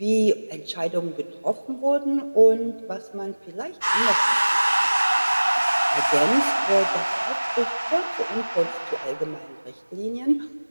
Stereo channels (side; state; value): both; inverted; correlation -1.00